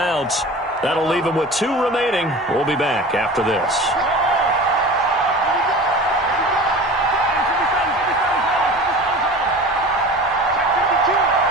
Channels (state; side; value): normal; both; correlation 0.37